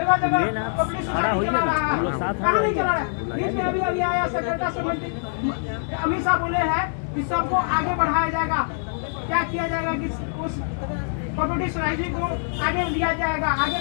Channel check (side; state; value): right; silent; digital silence